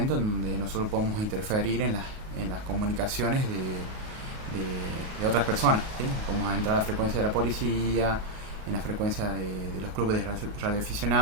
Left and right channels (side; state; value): left; late; 38 ms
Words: donde nosotros podemos interferir en las comunicaciones de otras personas, ¿sí? Podemos entrar a la frecuencia de la policía, en la frecuencia de los clubes de